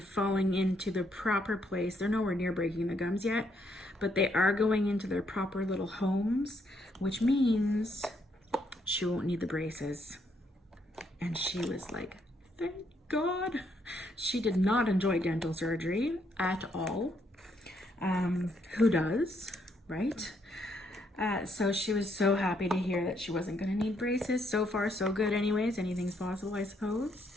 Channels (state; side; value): normal; both; correlation 0.73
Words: into the proper place. They're nowhere near breaking the gums yet, but they are going into their proper little homes, which means she won't need the braces. And she was like, thank God. She did not enjoy dental surgery at all. Who does, right? So she was so happy to hear that she wasn't going to need braces. So far, so good anyways. Anything's possible, I suppose.